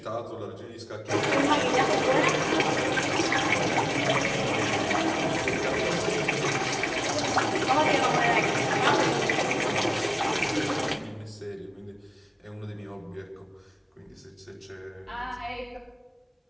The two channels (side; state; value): both; identical; correlation 1.00